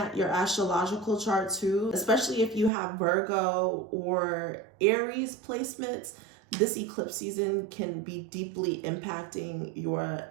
your astrological chart too, especially if you have Virgo or Aries placements. This eclipse season can be deeply impacting your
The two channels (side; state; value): left; drops out; at 2.7 s